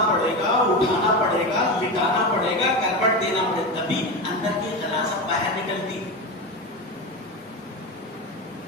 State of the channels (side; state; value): both; normal; correlation 0.20